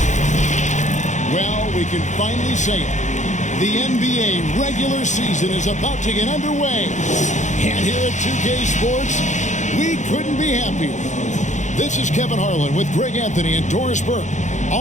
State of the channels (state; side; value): late; right; 0.35 ms